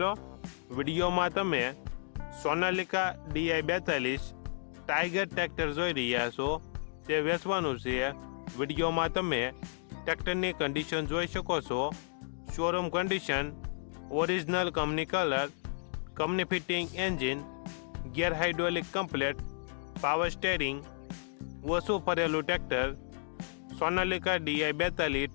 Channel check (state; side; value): silent; right; digital silence